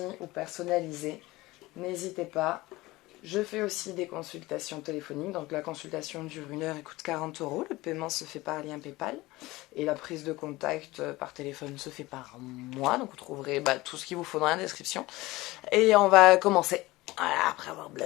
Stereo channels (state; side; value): quieter; right; 19.8 dB